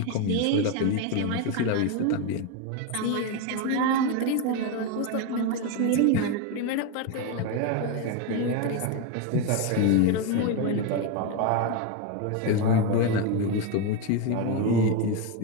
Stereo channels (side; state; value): both; different; correlation 0.02